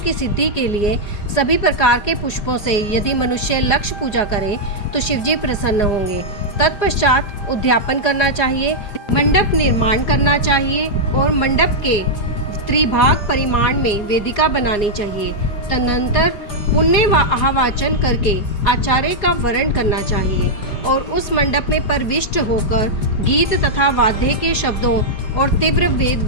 सिद्धि के लिए सभी प्रकार के पुष्पों से यदि मनुष्य लक्ष्य पूजा करे तो शिवजी प्रसन्न होंगे। तत्पश्चात उद्यापन करना चाहिए, मंडप निर्माण करना चाहिए और मंडप के त्रिभाग परिमाण में वेदिका बनानी चाहिए। तदनंतर पुण्य व आवाचन करके आचार्य का वरण करना चाहिए और उस मंडप में प्रविष्ट होकर गीत तथा वाद्य के शब्दों और तीव्र वेद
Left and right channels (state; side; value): late; right; 4.9 ms